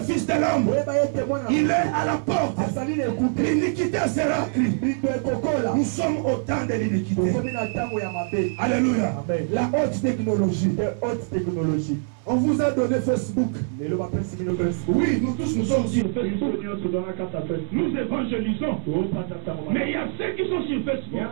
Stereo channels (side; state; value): left; silent; 62 dB below the other